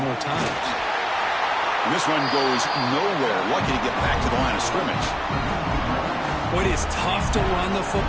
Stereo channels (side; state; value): both; identical; correlation 1.00